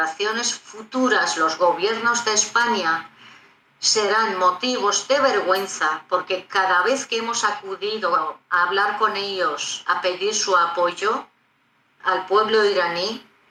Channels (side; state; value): both; identical; correlation 1.00